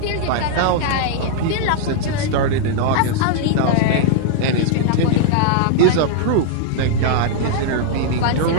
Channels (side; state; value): both; different; correlation -0.01